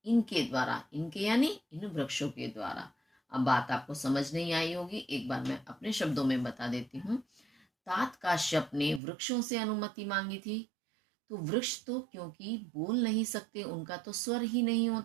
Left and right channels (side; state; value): left; drops out; at 9.0 s